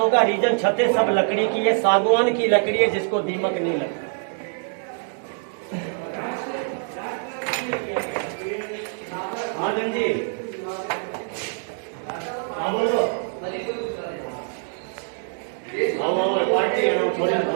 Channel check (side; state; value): left; silent; 62 dB below the other